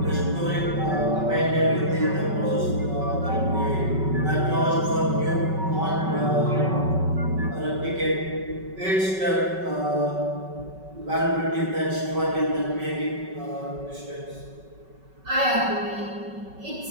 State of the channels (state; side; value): late; left; 5.3 ms